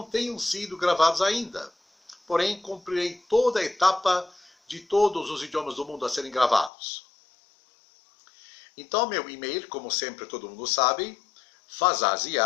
tenham sido gravados ainda. Porém, cumprirei toda a etapa de todos os idiomas do mundo a serem gravados. Então, meu e-mail, como sempre todo mundo sabe,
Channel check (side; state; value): right; drops out; at 6.7 s